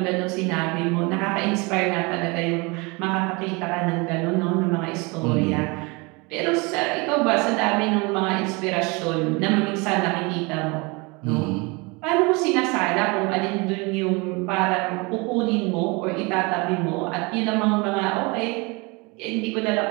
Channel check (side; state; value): left; quieter; 27.5 dB